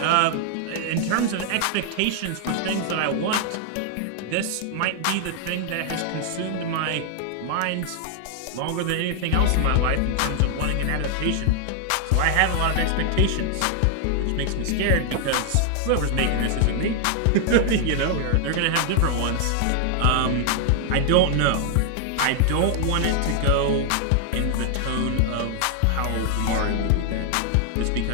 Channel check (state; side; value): different; both; correlation 0.00